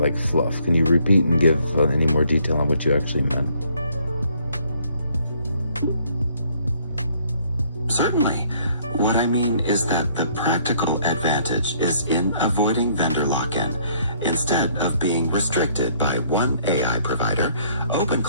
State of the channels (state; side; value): inverted; both; correlation -0.64